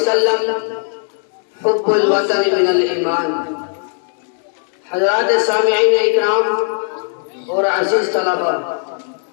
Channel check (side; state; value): right; silent; 56 dB below the other